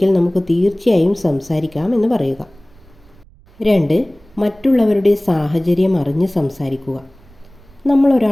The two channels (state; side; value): noise; right; rumble, 26 dB below the sound